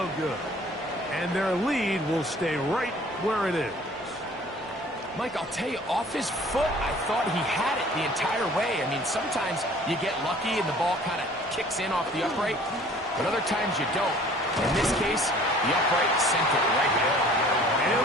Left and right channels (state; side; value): normal; both; correlation 0.51